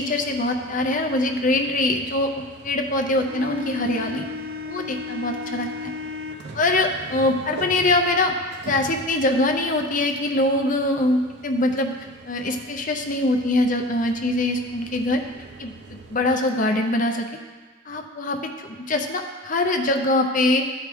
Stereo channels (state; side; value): normal; both; correlation 0.33